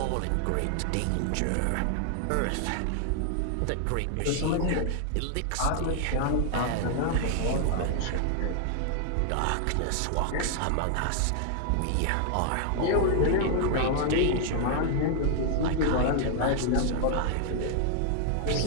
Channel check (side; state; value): both; different; correlation 0.00